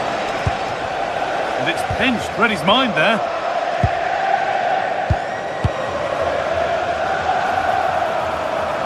And it's pinched Freddie's mind there.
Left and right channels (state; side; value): identical; both; correlation 1.00